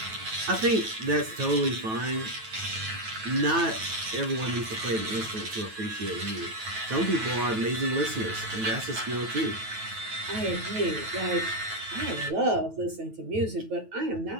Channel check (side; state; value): left; late; 9.2 ms